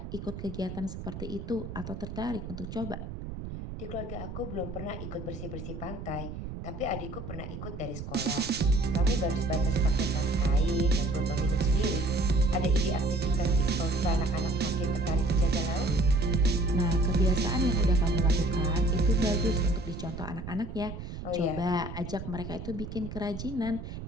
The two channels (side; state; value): right; noise; rumble, 9 dB below the sound